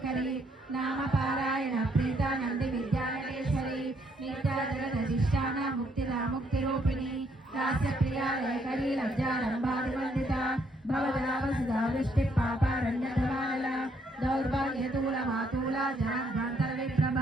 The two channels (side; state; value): both; normal; correlation 0.71